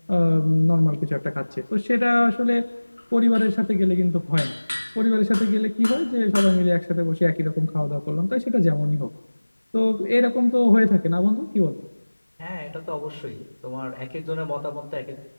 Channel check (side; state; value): both; inverted; correlation -1.00